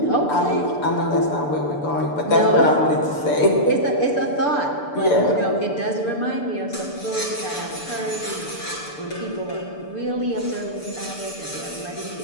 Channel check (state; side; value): late; right; 6.8 ms